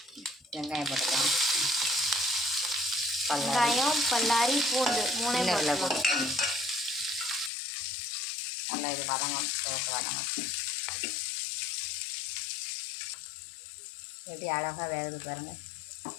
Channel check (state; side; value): drops out; right; at 7.5 s